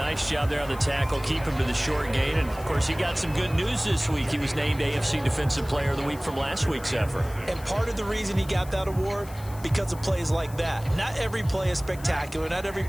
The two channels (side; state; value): left; noise; hiss, 19 dB below the sound